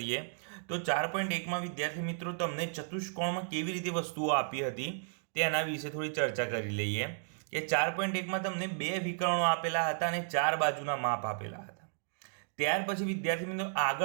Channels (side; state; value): left; silent; digital silence